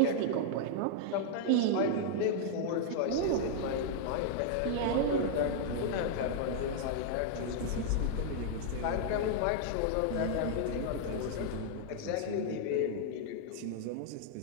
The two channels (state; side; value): different; both; correlation -0.01